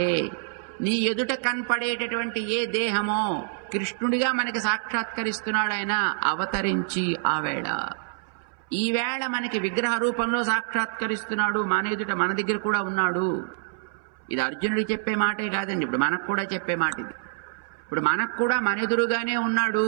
నీ ఎదుట కనపడేటటువంటి ఏ దేహమో కృష్ణుడిగా మనకి సాక్షాత్కరిస్తున్నాడు ఆయన అవతరించి ఆ వేళ. ఈవేళ మనకి విగ్రహ రూపంలో సాక్షాత్కరిస్తున్నాడు, మన ఎదుట మన దగ్గర కూడా ఉన్నాడు. ఇది అర్జునుడికి చెప్పే మాటే కాదండి, ఇప్పుడు మనకు కూడా చెప్పే మాట ఇది. ఇప్పుడు మనకు కూడా మన ఎదురుగానే ఉన్నాడు.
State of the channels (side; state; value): left; silent; 61 dB below the other